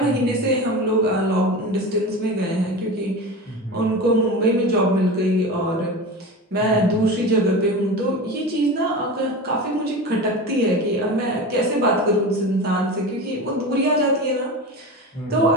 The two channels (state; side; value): normal; both; correlation 0.28